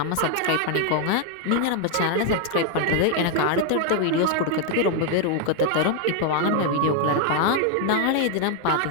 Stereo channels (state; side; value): different; both; correlation 0.00